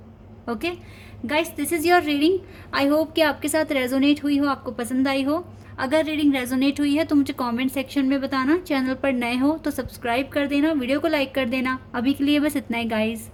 Okay guys, this is your reading. I hope कि आपके साथ रेजोनेट हुई हो, आपको पसंद आई हो। अगर रीडिंग रेजोनेट हुई है तो मुझे कमेंट सेक्शन में बताना। चैनल पर नए हो तो सब्सक्राइब कर देना, वीडियो को लाइक कर देना। अभी के लिए बस इतना ही गाइस,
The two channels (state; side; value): identical; both; correlation 1.00